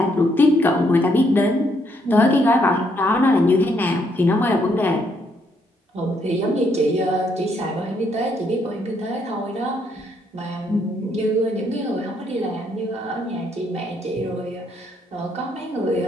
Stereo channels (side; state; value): both; normal; correlation 0.73